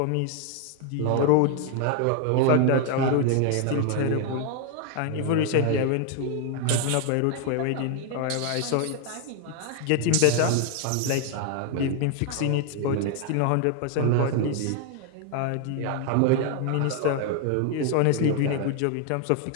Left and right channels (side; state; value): both; different; correlation 0.00